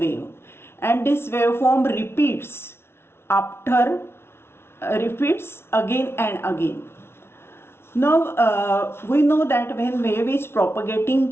and this waveform repeats again and again. Now, we know that when wave is propagating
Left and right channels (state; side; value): late; right; 0.12 ms